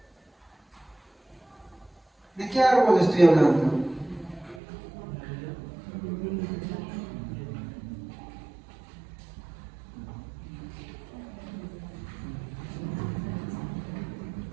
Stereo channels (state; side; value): drops out; left; at 4.6 s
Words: ¿de qué árbol estoy hablando?